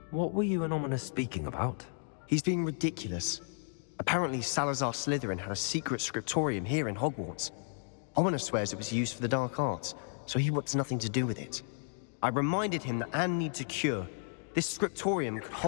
What were you and Ominous speaking about? He's being ridiculous. Apparently, Salazar Slytherin had a secret scriptorium here in Hogwarts. Ominous swears it was used for the dark arts, so he wants nothing to do with it. I reminded him that Anne needs a cure. This scriptorium could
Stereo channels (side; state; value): right; silent; 56 dB below the other